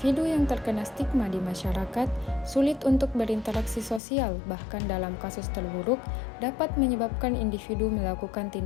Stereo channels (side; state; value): right; drops out; at 4.0 s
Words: yang terkena stigma di masyarakat sulit untuk berinteraksi sosial, bahkan dalam kasus terburuk dapat menyebabkan individu melakukan